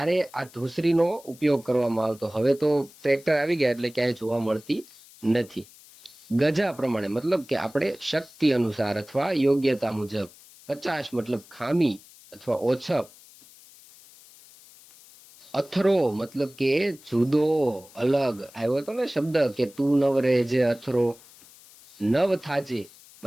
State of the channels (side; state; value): left; noise; hiss, 23 dB below the sound